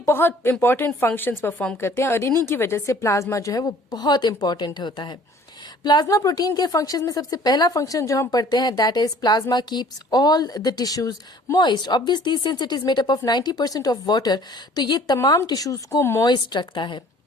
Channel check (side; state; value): both; normal; correlation 0.53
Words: बहुत इंपॉर्टेंट फंक्शंस परफॉर्म करते हैं और इन्हीं की वजह से प्लाज्मा जो है वो बहुत इंपॉर्टेंट होता है। प्लाज्मा प्रोटीन के फंक्शंस में सबसे पहला फंक्शन जो हम पढ़ते हैं that is plasma keeps all the tissues moist. Obviously since it is made up of 90% of water, तो ये तमाम टिश्यूज को मॉइस्ट रखता है।